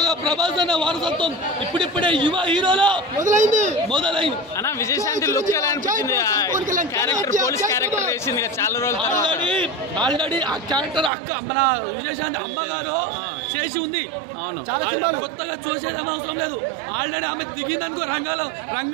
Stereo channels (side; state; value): left; drops out; at 11.1 s